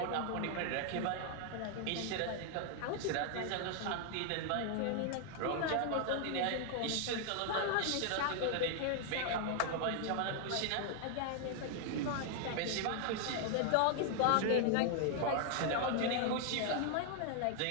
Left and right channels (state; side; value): different; both; correlation 0.00